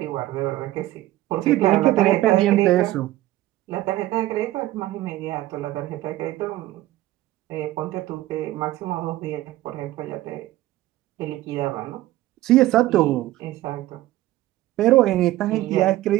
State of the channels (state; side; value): quieter; left; 15.9 dB